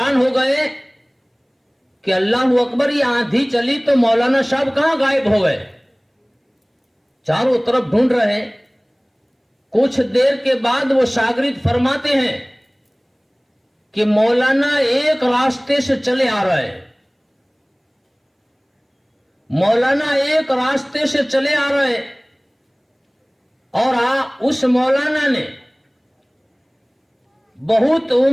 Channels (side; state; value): both; identical; correlation 1.00